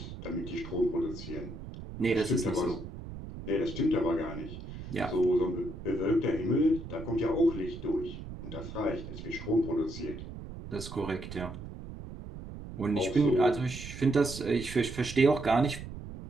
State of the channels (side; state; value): right; noise; rumble, 11 dB below the sound